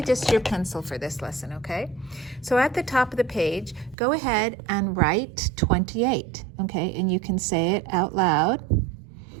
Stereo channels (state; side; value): drops out; left; at 4.0 s